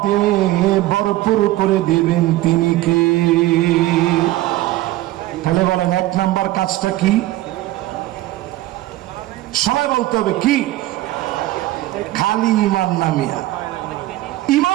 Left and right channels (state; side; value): quieter; left; 16.3 dB